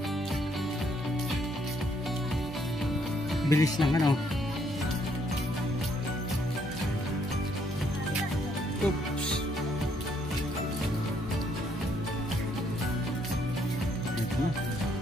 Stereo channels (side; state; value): both; normal; correlation 0.70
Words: Bilis lang Oops. Ito na.